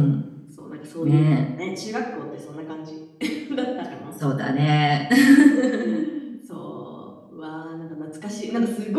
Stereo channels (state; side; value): identical; both; correlation 1.00